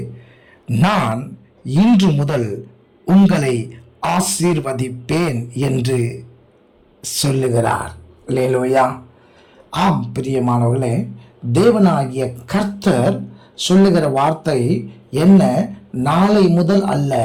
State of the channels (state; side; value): identical; both; correlation 1.00